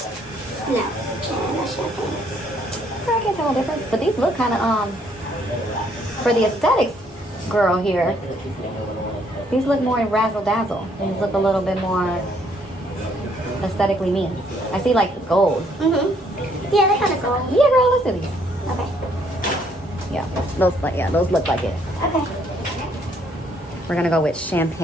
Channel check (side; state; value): both; normal; correlation 0.67